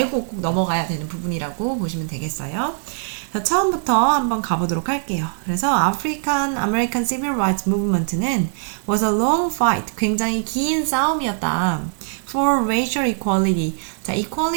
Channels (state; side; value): silent; left; 65 dB below the other